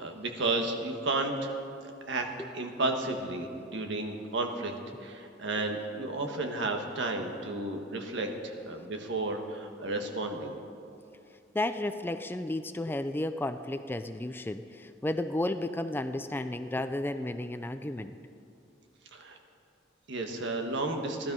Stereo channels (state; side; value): normal; both; correlation 0.32